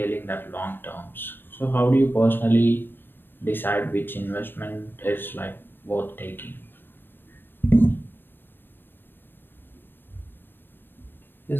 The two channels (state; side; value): late; right; 0.096 ms